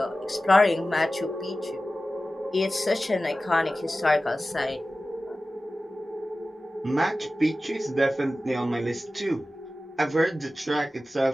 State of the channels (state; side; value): normal; both; correlation 0.95